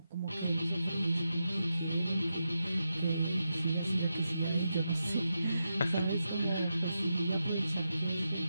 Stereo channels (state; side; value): inverted; both; correlation -0.87